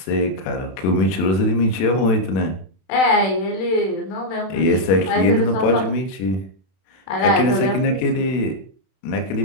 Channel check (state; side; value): late; right; 32 ms